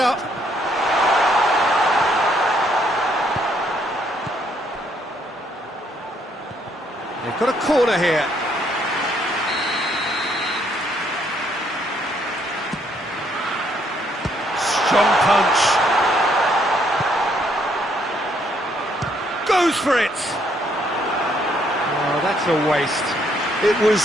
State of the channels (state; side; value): normal; both; correlation 0.70